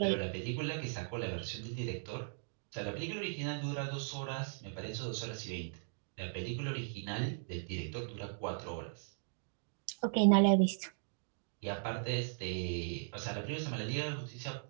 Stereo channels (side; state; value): left; silent; digital silence